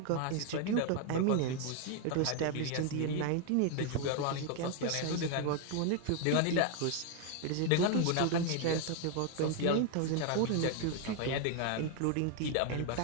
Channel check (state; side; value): different; both; correlation 0.00